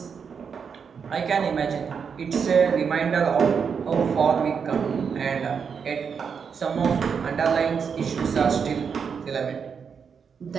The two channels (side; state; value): left; quieter; 6.4 dB